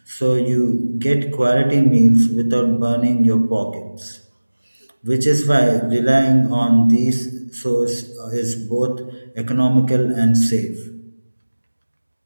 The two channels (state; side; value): inverted; both; correlation -1.00